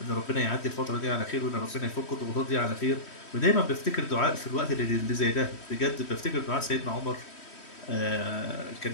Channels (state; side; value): late; right; 3.1 ms